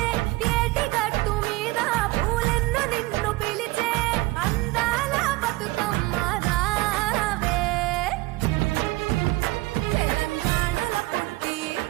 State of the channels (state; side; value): quieter; left; 20.3 dB